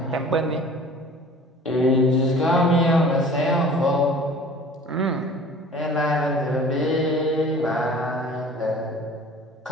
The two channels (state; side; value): normal; both; correlation 0.45